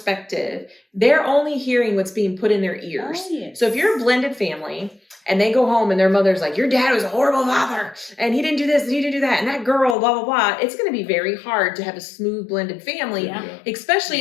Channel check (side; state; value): right; drops out; at 10.0 s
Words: they're only hearing what's being put in their ears. Oh, yes. So if you're a blended family and they go home and their mother's like, your dad was a horrible father and he didn't do this and he didn't do that and that girl, blah, blah, blah, it's going to be very hard to have a smooth blended family, especially